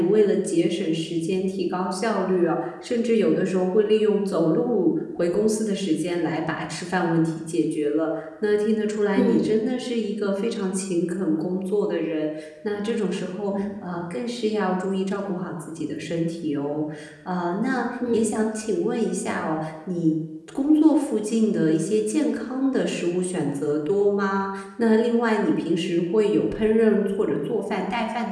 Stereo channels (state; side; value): identical; both; correlation 1.00